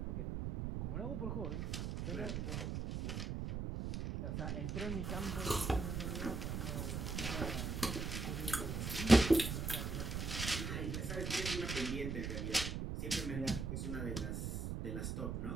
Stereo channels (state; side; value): noise; right; rumble, 2 dB below the sound